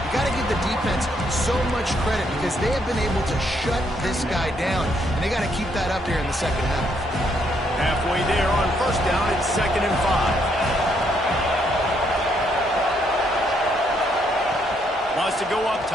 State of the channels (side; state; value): both; normal; correlation 0.73